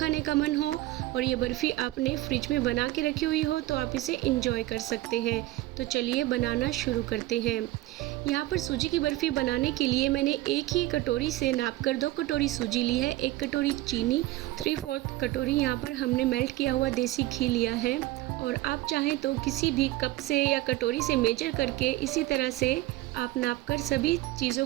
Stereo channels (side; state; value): left; quieter; 17.1 dB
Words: का मन हो और ये बर्फ़ी आपने फ्रिज में बना के रखी हुई हो तो आप इसे इंजॉय कर सकते हैं। तो चलिए बनाना शुरू करते हैं। यहाँ पर सूजी की बर्फ़ी बनाने के लिए मैंने एक ही कटोरी से नापकर 2 कटोरी सूजी ली है, 1 कटोरी चीनी, 3/4 कटोरी यहाँ पर हमने मेल्ट किया हुआ देसी घी लिया है। और आप चाहें तो किसी भी कप से या कटोरी से मेजर करके इसी तरह से आप नापकर सभी चीज़ों